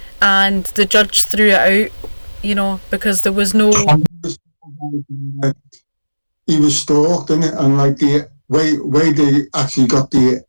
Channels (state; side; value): inverted; both; correlation -1.00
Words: and the judge threw it out, you know, because there was no... He was stalked, didn't it? And like the way they actually got the